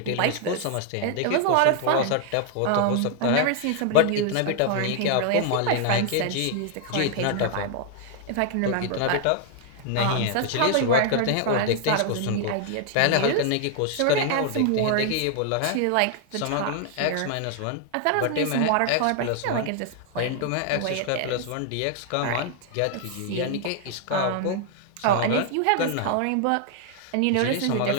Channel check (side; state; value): both; different; correlation 0.00